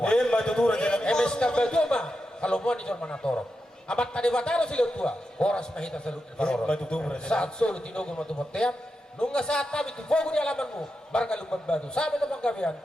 Matutu raja nami. Emes na baguma, kalumuan ni John Manatoro. Amat tadi bataro sila tua, boras mahita salong ni Paroro. Matutu raja. Saat solo tinugo matubot-tiyan, nung nga saat kami, tufogo ni alaman mo, barang lumban batu. Sabi na panggabihan,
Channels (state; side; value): normal; both; correlation 0.88